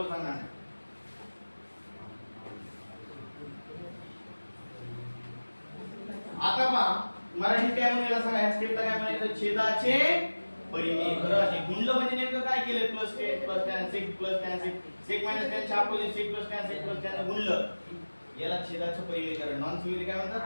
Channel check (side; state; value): both; inverted; correlation -1.00